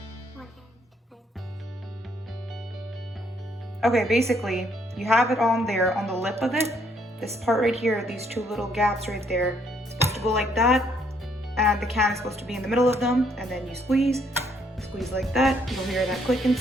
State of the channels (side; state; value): both; normal; correlation 0.69